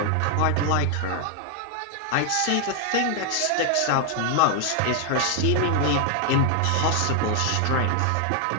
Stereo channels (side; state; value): both; different; correlation 0.00